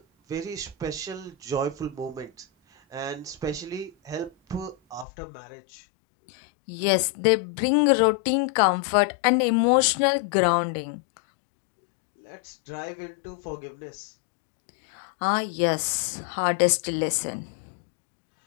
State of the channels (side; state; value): right; drops out; at 5.1 s